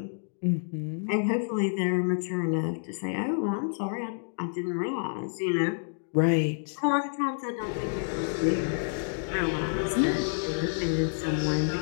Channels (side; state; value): right; silent; digital silence